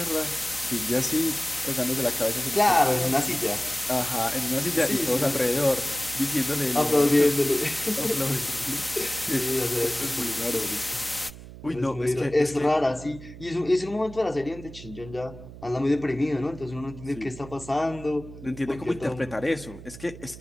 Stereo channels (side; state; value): right; noise; hum, 15 dB below the sound